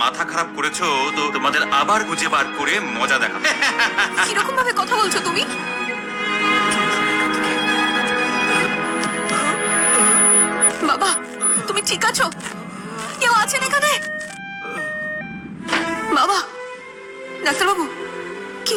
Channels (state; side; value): identical; both; correlation 1.00